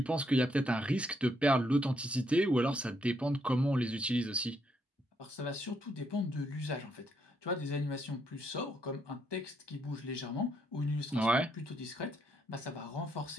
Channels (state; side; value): normal; both; correlation 0.75